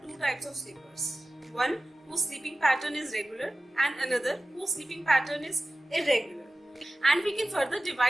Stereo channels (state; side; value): normal; both; correlation 0.96